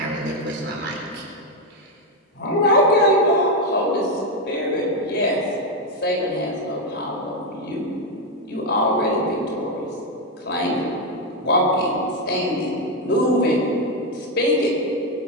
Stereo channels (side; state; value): both; normal; correlation 0.06